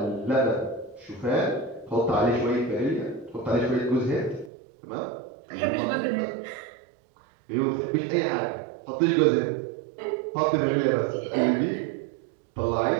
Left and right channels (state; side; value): drops out; left; at 4.5 s